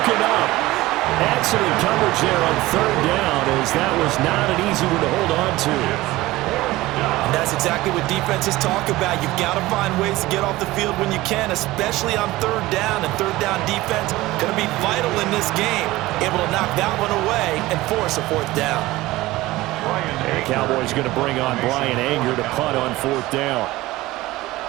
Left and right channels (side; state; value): left; quieter; 18.4 dB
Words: up. Excellent coverage there on 3rd down, as that was not an easy one to hold on to. And that's exactly what defenses talk about. You've got to find ways to get off the field when you can, especially on 3rd down. And 3rd down defense going to be vital in this game. Able to knock that one away and force a 4th down. And the Cowboys going to bring on Brian Anger to punt on 4th down.